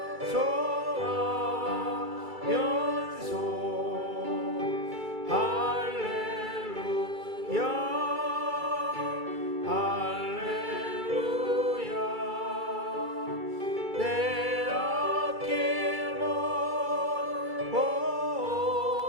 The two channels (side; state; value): left; late; 2.3 ms